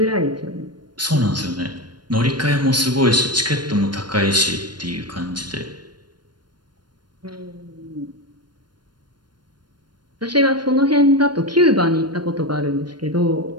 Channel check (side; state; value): left; late; 0.71 ms